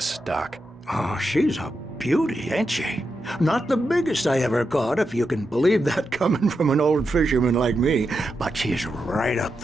Doc. Oh, she's a beauty, ain't she? Not the biggest I ever caught, if you can believe that coming from an old fisherman like me, but she's right up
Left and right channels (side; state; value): both; normal; correlation 0.87